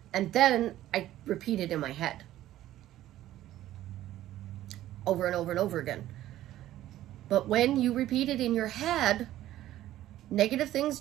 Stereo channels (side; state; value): left; quieter; 13.8 dB